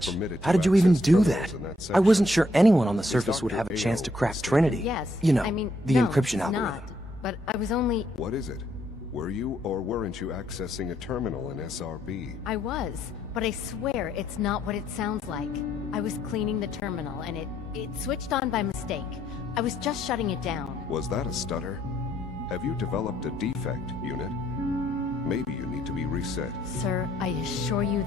permitted to How did you even access do terminals that? in that I section. wasn't sure anyone on the Is surface would Dr. have a chance Ayo to crack mistaken? Trinity. Yes. You know, I mean, the no, encryption it's algorithm. not. But I was only... What is it? Were you or weren't you accessing a terminal in SRB? I was. But I swear it's not what it sounds like. I was cleaning the terminal, and it switched on by mistake. I was just shutting it down. Was that a stutter? Have you developed a defect, unit? Maybe you need to be reset. Sir, I assure you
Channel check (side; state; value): both; normal; correlation 0.71